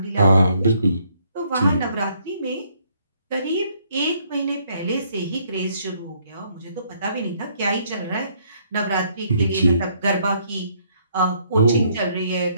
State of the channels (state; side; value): inverted; both; correlation -0.68